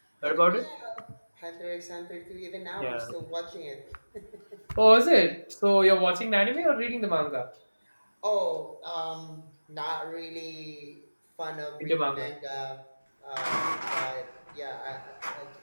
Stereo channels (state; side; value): inverted; both; correlation -1.00